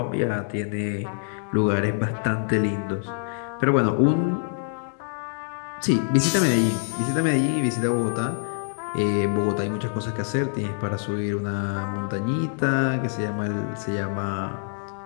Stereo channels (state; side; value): silent; right; digital silence